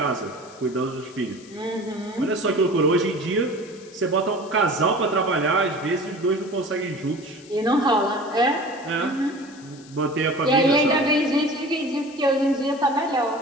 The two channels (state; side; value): noise; left; hiss, 23 dB below the sound